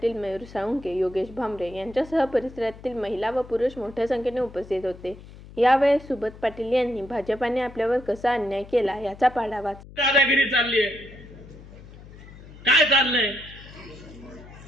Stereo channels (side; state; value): left; noise; hum, 18 dB below the sound